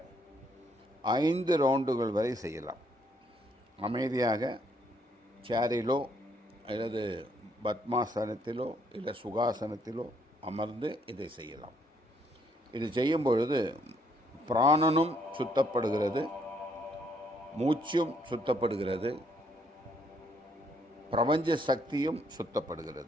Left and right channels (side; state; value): both; normal; correlation 0.69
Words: 5 ரவுண்டுகள் வரை செய்யலாம். அமைதியாக சேரிலோ அல்லது பத்மாசனத்திலோ இல்லை சுகாசனத்திலோ அமர்ந்து இதை செய்யலாம். இது செய்யும் பொழுது பிராணனும் சுத்தப்படுகிறது, மூச்சும் சுத்தப்படுகிறது, பிரபஞ்ச சக்தியும்